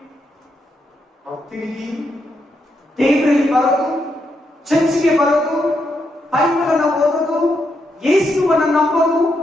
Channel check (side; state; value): both; normal; correlation 0.81